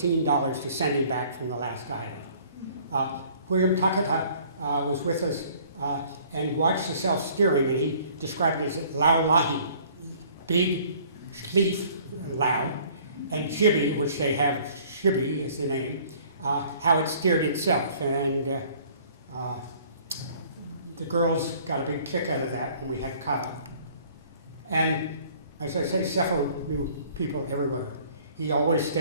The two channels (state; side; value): inverted; both; correlation -0.55